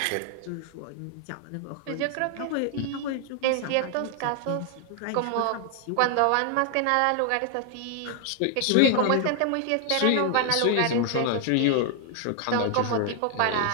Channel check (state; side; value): different; both; correlation 0.00